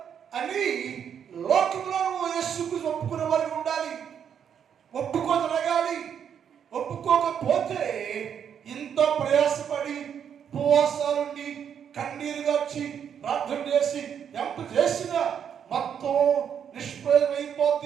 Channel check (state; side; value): quieter; left; 8.2 dB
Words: అని లోకంలో నువ్వు యేసుకు ఒప్పుకునే వారికి ఉండాలి. ఒప్పుకోదలగాలి. ఒప్పుకో ఒప్పుకోకపోతే ఇంత ప్రయాసపడి ఉపవాసాలుండి కన్నీరుగా వచ్చి ప్రార్థన చేసి ఎంత చేసినా మొత్తం